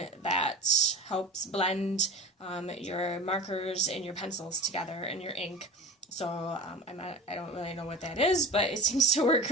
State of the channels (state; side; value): normal; both; correlation 0.32